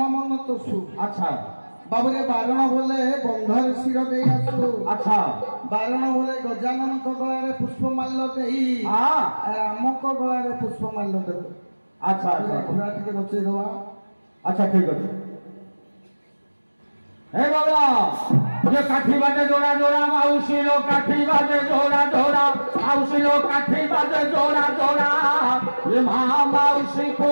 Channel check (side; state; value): both; inverted; correlation -1.00